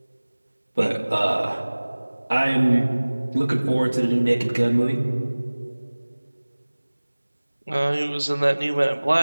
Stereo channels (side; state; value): both; inverted; correlation -1.00